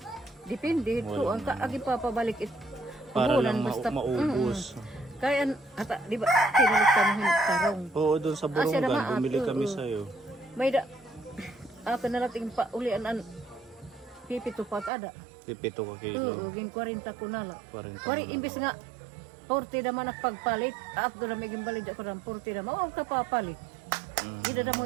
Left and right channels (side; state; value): left; drops out; at 14.9 s